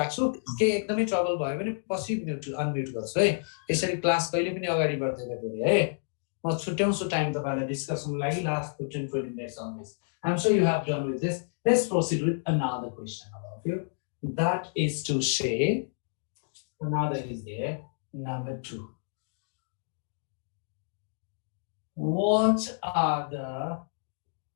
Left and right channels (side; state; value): right; silent; digital silence